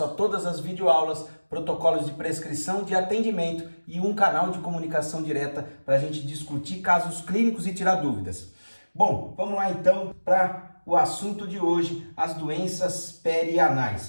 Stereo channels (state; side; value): inverted; both; correlation -1.00